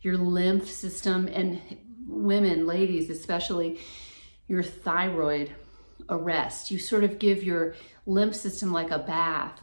your lymph system, and women, ladies especially, your thyroid a rest. You sort of give your lymph system like a bath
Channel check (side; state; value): both; inverted; correlation -1.00